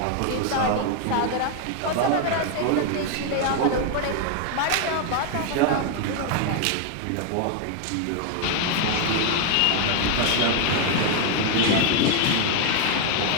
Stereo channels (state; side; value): different; both; correlation 0.01